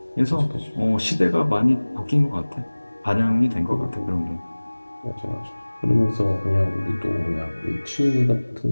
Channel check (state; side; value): inverted; both; correlation -1.00